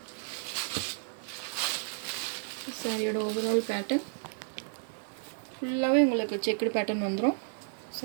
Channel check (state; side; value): silent; left; digital silence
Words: சாரியோட ஓவரால் பேட்டர்ன் ஃபுல்லாவே உங்களுக்கு செக்டு பேட்டர்ன் வந்துரும்.